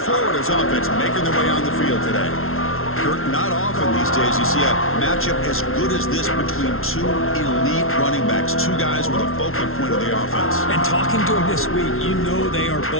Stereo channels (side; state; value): right; late; 0.62 ms